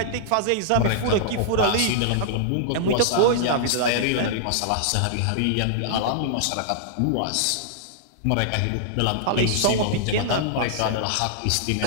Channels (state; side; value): different; both; correlation -0.01